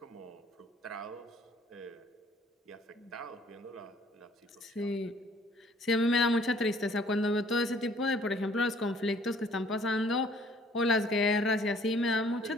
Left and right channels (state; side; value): normal; both; correlation 0.58